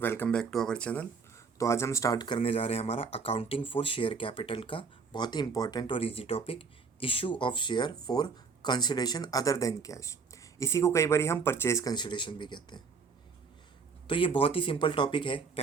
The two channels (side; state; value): left; quieter; 5.2 dB